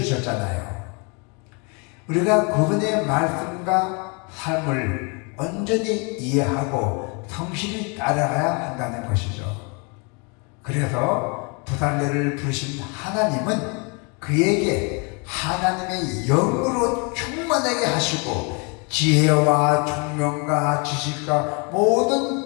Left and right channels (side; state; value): right; quieter; 33.2 dB